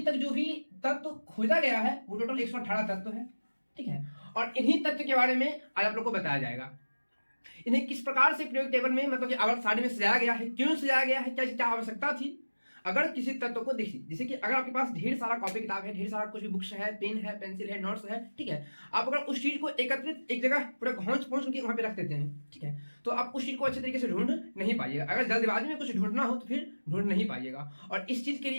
तक जो भी तत्व खोजा गया है वो टोटल 118 तत्व है। ठीक है, और इन्हीं तत्व के बारे में आज आप लोग को बताया जाएगा। इन्हें किस प्रकार से पीरियोडिक टेबल में मतलब कि आवर्त सारणी में सजाया गया है, क्यों सजाया गया है, क्या आवश्यकता थी। अगर किसी तत्व को देखिए, जैसे कि अगर आपके पास ढेर सारा कॉपी किताब है, ढेर सारा कुछ भी बुक्स है, पेन है, पेंसिल है, नोट्स है, ठीक है, आप अगर उस चीज को एकत्रित एक जगह पूरा घोंच पहुंच के वहां पे रख देते हैं, ठीक है, तो आप उस चीज को अच्छे तरीके से ढूंढ नहीं पाइएगा। अगर जल्दबाजी में कुछ ढूंढना हो तो फिर ढूंढ नहीं पाइएगा। और इस चीज के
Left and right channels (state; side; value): inverted; both; correlation -1.00